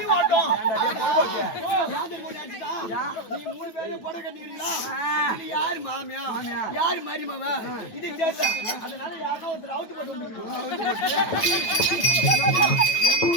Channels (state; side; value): late; right; 9.2 ms